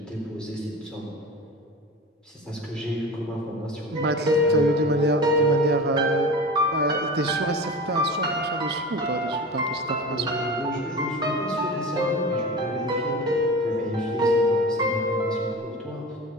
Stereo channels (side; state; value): both; normal; correlation 0.32